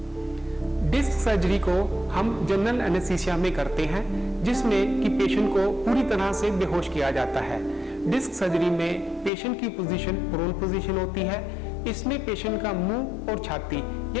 डिस्क सर्जरी को हम जनरल एनेस्थीसिया में करते हैं, जिसमें कि पेशेंट को पूरी तरह से बेहोश किया जाता है। डिस्क सर्जरी में पेशेंट की पोजीशन प्रोन पोजीशन होती है। इसमें पेशेंट का मुंह और छाती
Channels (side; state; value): right; drops out; at 9.3 s